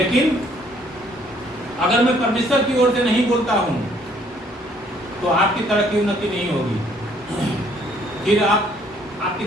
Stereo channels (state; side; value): normal; both; correlation 0.63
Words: अगर मैं परमेश्वर की ओर से नहीं बोलता हूं तो आपकी तरक्की उन्नति नहीं होगी। फिर आपकी